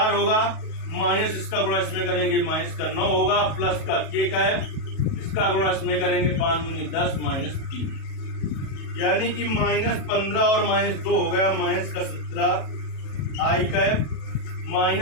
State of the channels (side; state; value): right; late; 37 ms